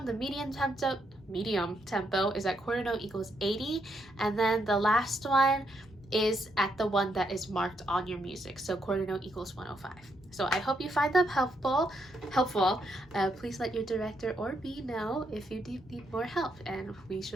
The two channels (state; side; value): normal; both; correlation 0.77